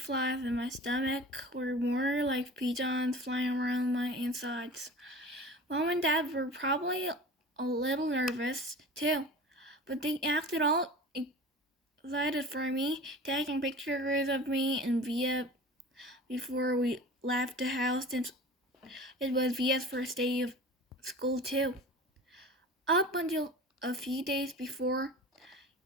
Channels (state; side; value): normal; both; correlation 0.37